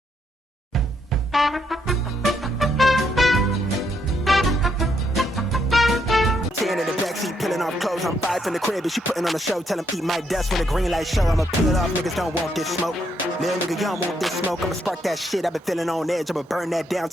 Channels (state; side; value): normal; both; correlation 0.75